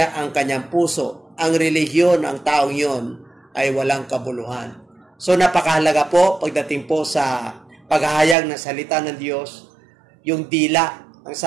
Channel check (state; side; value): drops out; left; at 8.3 s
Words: ang kanyang puso, ang relihiyon ng taong yon ay walang kabuluhan. So napakahalaga po pagdating po sa paghahayag ng salita ng Diyos, yung dila. Ang